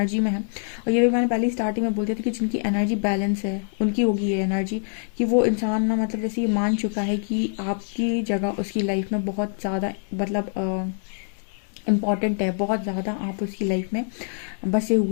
में है, और ये भी मैंने पहले स्टार्टिंग में बोल दिया था कि जिनकी एनर्जी बैलेंस है उनकी होगी ये एनर्जी, कि वो इंसान ना मतलब जैसे ये मान चुका है कि आपकी जगह उसकी लाइफ में बहुत ज़्यादा मतलब इम्पॉर्टेंट है, बहुत ज़्यादा आप उसकी लाइफ में बसे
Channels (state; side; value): silent; right; 62 dB below the other